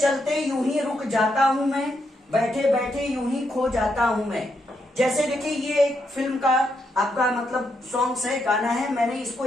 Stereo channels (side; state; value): both; normal; correlation 0.80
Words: यूं ही रुक जाता हूं मैं, बैठे बैठे यूं ही खो जाता हूं मैं। जैसे देखिए ये एक फिल्म का आपका मतलब सॉन्ग्स है, गाना है, मैंने इसको